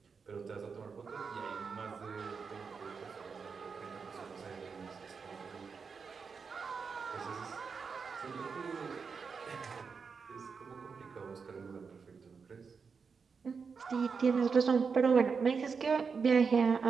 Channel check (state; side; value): quieter; left; 5.5 dB